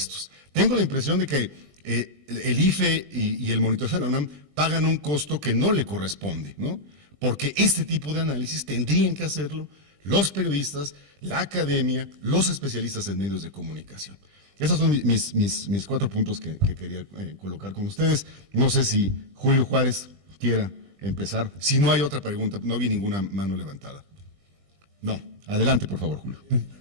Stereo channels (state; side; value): late; left; 20 ms